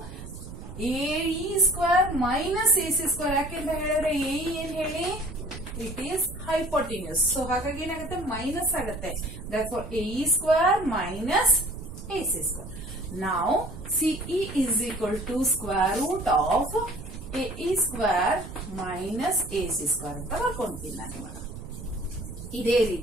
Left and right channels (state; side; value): noise; right; rumble, 12 dB below the sound